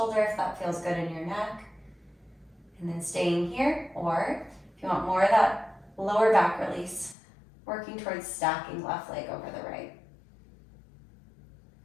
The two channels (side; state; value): right; drops out; at 7.2 s